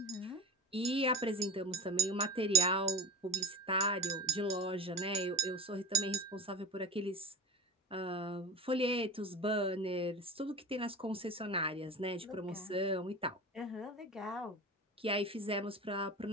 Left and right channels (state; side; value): normal; both; correlation 0.29